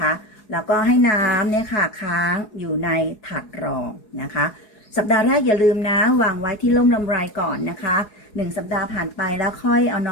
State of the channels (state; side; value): late; right; 4.7 ms